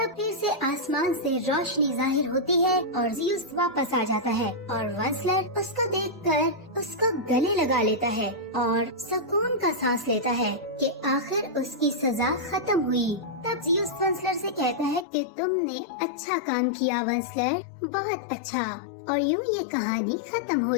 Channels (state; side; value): drops out; right; at 15.1 s